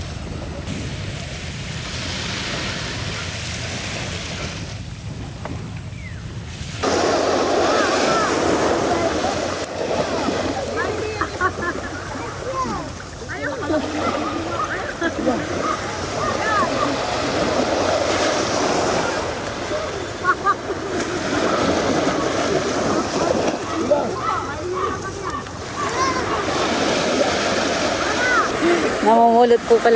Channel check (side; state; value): both; identical; correlation 1.00